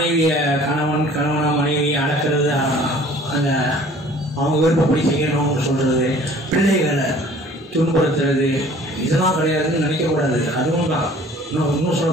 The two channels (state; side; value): normal; both; correlation 0.51